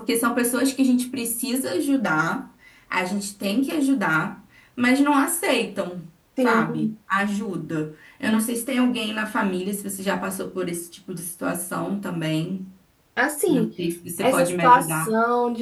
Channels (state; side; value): identical; both; correlation 1.00